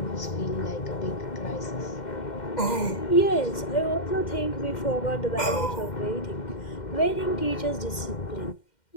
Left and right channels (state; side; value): late; right; 2.1 ms